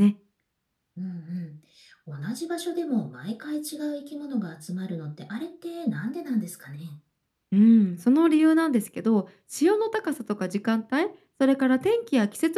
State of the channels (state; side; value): identical; both; correlation 1.00